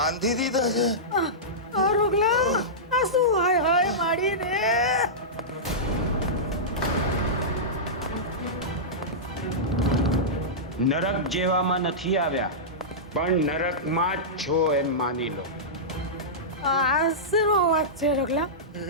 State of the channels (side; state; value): both; normal; correlation -0.14